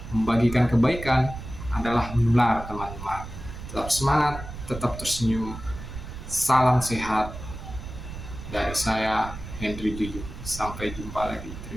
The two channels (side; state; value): right; noise; rumble, 10 dB below the sound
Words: Membagikan kebaikan adalah menular teman-teman. Tetap semangat, tetap tersenyum. Salam sehat dari saya, Henry Juju. Sampai jumpa lagi.